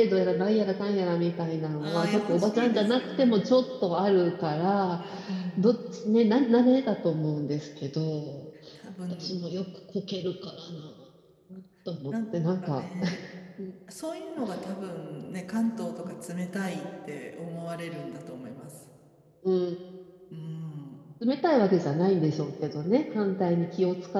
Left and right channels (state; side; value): identical; both; correlation 1.00